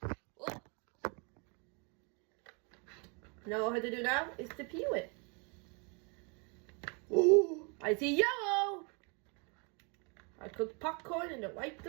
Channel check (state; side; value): quieter; left; 34.3 dB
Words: Oh. Now all I have to do now is to peel it. Ooh, I see yellow. I cooked popcorn in the right